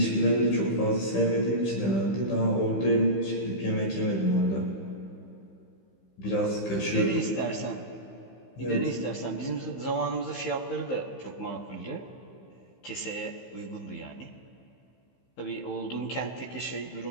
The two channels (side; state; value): right; late; 15 ms